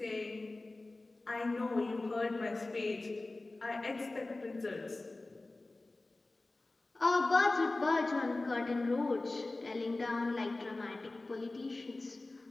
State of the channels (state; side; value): quieter; right; 3.0 dB